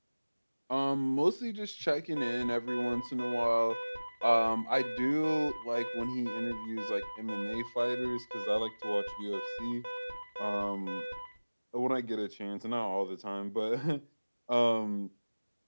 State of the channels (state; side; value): inverted; both; correlation -1.00